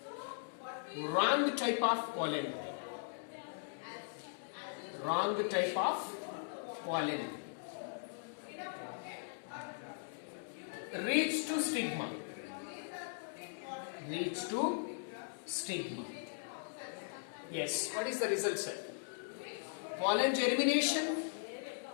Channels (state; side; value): silent; right; digital silence